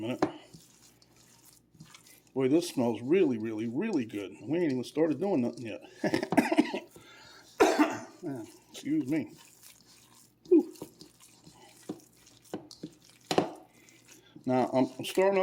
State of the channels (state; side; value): identical; both; correlation 1.00